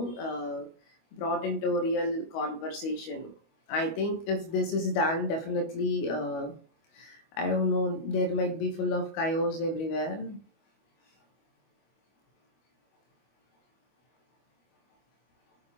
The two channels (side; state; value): right; late; 25 ms